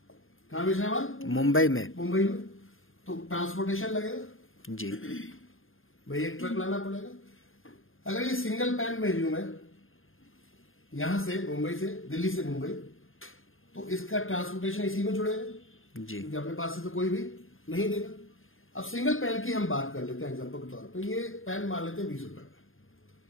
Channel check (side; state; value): right; late; 0.59 ms